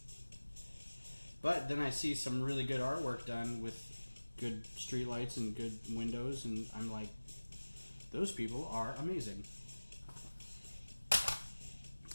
But then I see some really good artwork done with good streetlights and good windows, and I'm like, those people are amazing.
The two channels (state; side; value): inverted; both; correlation -1.00